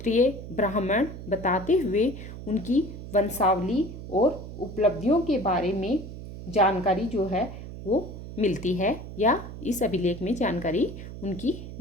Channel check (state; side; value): noise; right; hum, 11 dB below the sound